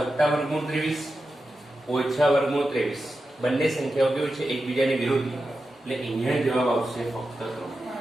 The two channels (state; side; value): normal; both; correlation 0.91